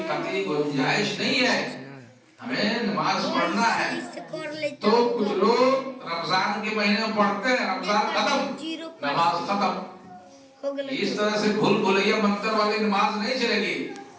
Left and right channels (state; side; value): identical; both; correlation 1.00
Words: قطعی گنجائش نہیں ہے، ہمیں نماز پڑھنا ہے۔ تو کچھ لوگ رمضان کے مہینے میں پڑھتے ہیں، رمضان ختم نماز ختم، اس طرح سے بھول بھلیا منتر والی نماز نہیں چلے گی،